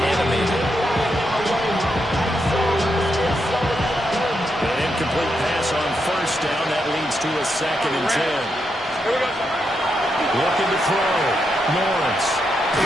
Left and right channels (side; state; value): both; normal; correlation 0.82